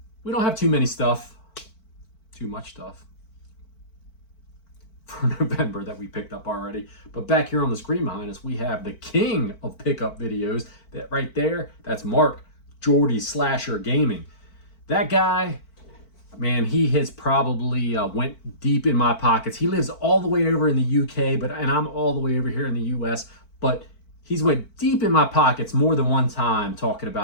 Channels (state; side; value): late; right; 4.5 ms